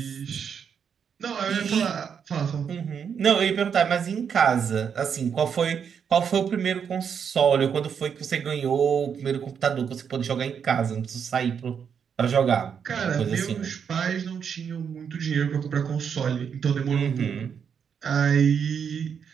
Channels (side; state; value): left; quieter; 7.2 dB